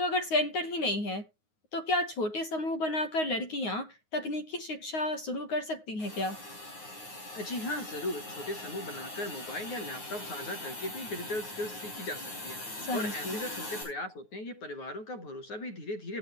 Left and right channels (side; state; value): right; late; 9.5 ms